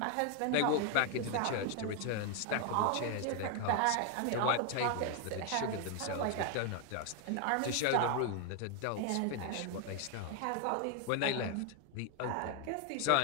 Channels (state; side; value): different; both; correlation 0.01